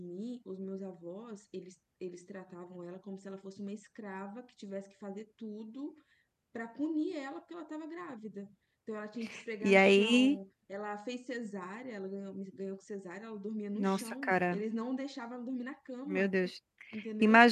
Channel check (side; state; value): both; identical; correlation 1.00